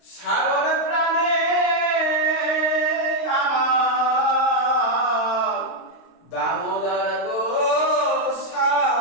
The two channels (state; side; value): late; right; 22 ms